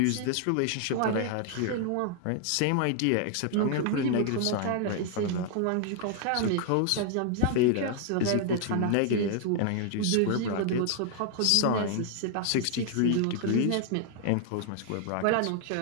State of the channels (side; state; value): both; different; correlation 0.00